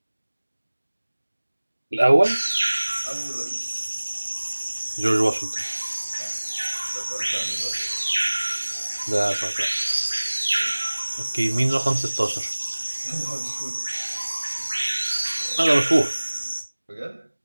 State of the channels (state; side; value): inverted; both; correlation -1.00